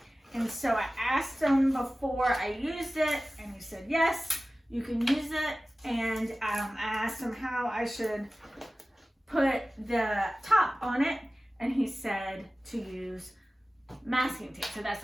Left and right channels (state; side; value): normal; both; correlation 0.96